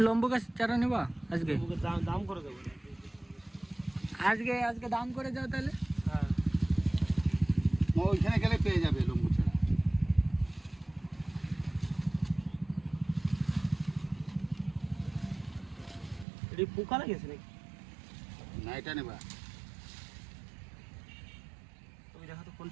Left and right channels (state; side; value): drops out; left; at 16.2 s